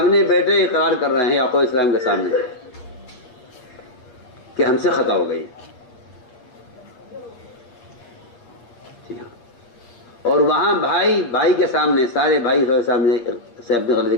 بیٹے اقرار کر رہے ہیں یعقوب السلام کے سامنے کہ ہم سے خطا ہو گئی. جی ہاں. اور وہاں بھائی کے سامنے سارے بھائی کے سامنے سے اپنی غلطی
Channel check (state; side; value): late; right; 8.5 ms